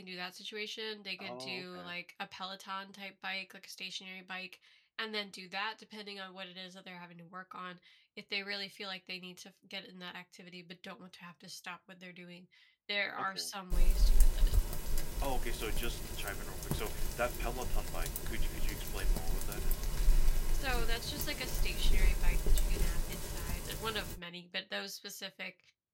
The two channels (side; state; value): both; identical; correlation 1.00